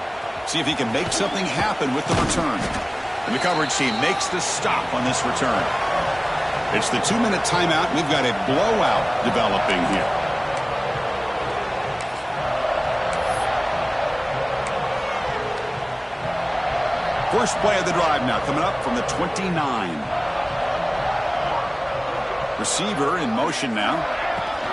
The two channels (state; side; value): identical; both; correlation 1.00